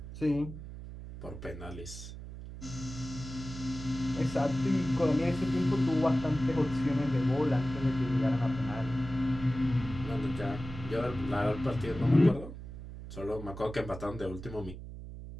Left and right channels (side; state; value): right; noise; hum, 11 dB below the sound